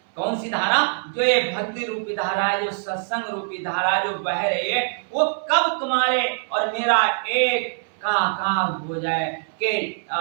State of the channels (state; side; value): silent; left; 63 dB below the other